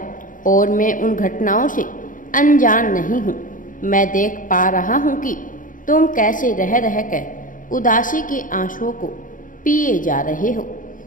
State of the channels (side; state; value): right; late; 0.39 ms